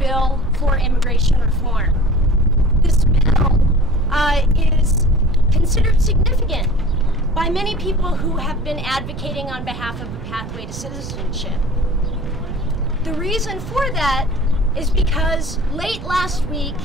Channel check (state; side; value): noise; right; rumble, 10 dB below the sound